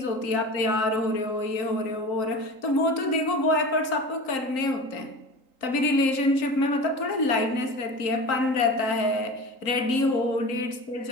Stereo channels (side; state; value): right; late; 3.8 ms